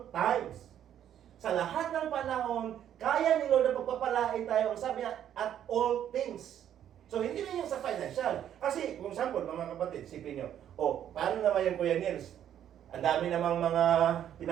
times. Sa lahat ng panahon, kaya ni Lord na pagpapalain tayo. Ang sabi niya, at all things. So, hindi na yung sa financial. Kasi, kung example, mga kapatid, sipin nyo, paano naman yung Kuya Nils? Ang dami namang mga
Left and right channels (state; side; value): quieter; left; 10.3 dB